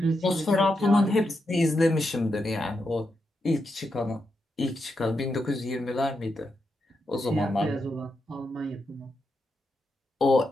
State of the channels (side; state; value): both; normal; correlation 0.85